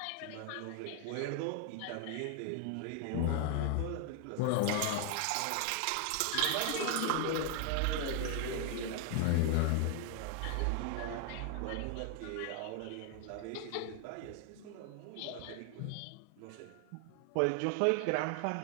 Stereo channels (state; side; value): different; both; correlation 0.00